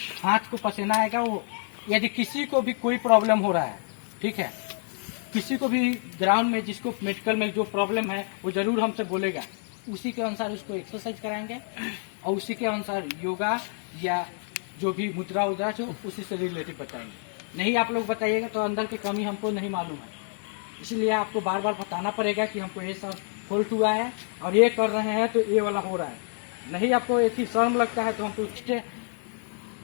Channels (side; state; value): right; silent; 55 dB below the other